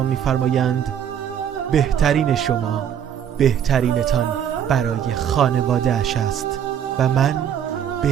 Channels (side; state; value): left; quieter; 9.2 dB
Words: می‌فرمایند بهترین شما بهترینتان برای خانواده اش است و من